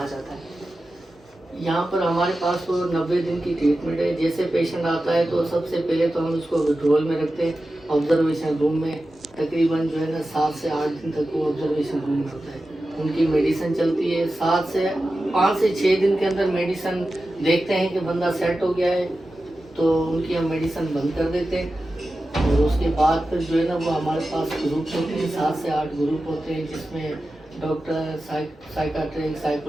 जाता है? यहाँ पर हमारे पास तो 90 दिन की ट्रीटमेंट है। जैसे पेशेंट आता है तो सबसे पहले तो हम उसको विड्रॉल में रखते हैं, ऑब्जर्वेशन रूम में। तकरीबन जो है ना 7 से 8 दिन तक वो ऑब्जर्वेशन रूम में होता है। उनकी मेडिसिन चलती है। 5 से 6 दिन के अंदर मेडिसिन देखते हैं कि बंदा सेट हो गया है तो उनकी हम मेडिसिन बंद कर देते हैं। और उसके बाद फिर जो है ना वो हमारे पास ग्रुप होते हैं, 7 से 8 ग्रुप होते हैं, जिसमें doctor, psychiatric,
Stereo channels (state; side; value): normal; both; correlation 0.93